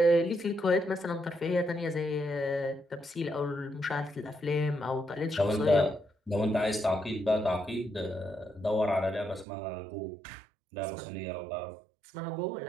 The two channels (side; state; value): left; drops out; at 9.5 s